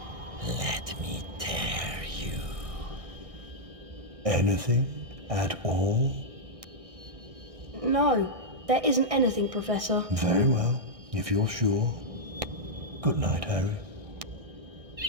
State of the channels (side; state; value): left; late; 1.6 ms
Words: Let me tear you. Anything at all? No, there isn't anything, Professor. Very well, if you're sure. Good night, Harry.